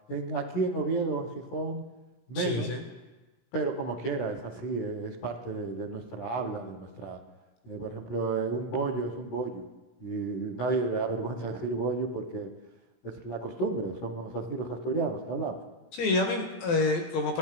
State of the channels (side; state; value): right; late; 18 ms